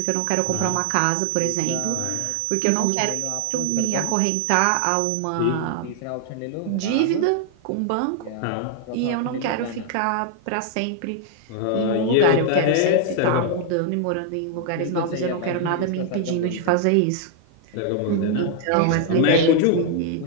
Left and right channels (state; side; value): different; both; correlation 0.00